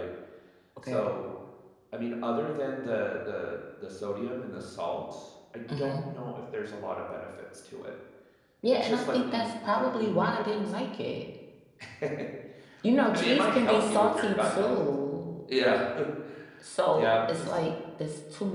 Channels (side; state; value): both; identical; correlation 1.00